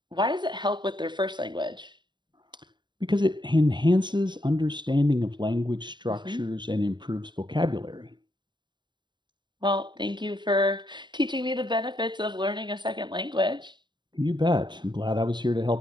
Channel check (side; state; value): left; late; 0.22 ms